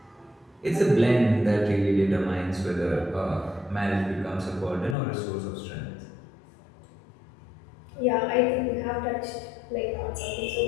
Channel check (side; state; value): right; drops out; at 5.0 s